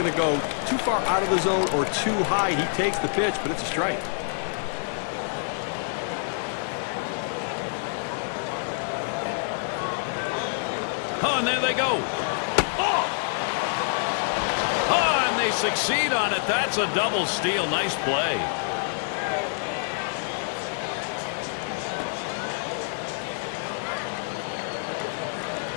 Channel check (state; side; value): silent; right; digital silence